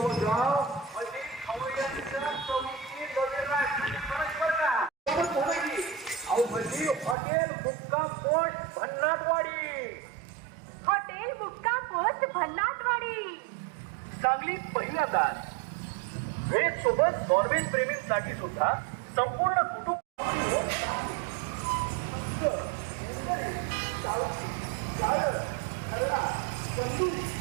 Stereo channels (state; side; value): drops out; left; at 7.2 s